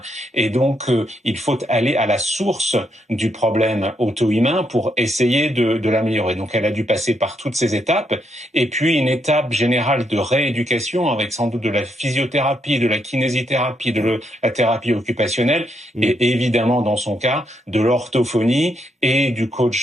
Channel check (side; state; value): both; normal; correlation 0.78